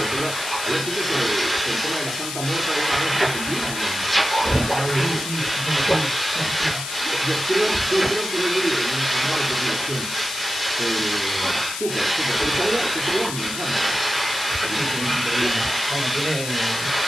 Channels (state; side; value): noise; left; hiss, 6 dB below the sound